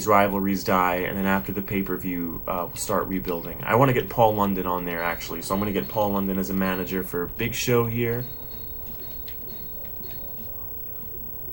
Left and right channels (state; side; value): noise; right; rumble, 14 dB below the sound